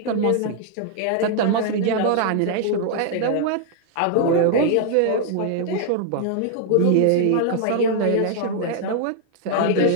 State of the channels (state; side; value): different; both; correlation 0.00